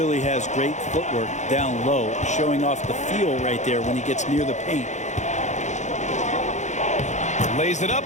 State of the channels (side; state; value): right; late; 0.34 ms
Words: has great footwork down low, showing off the feel right there when he gets near the paint. Lays it up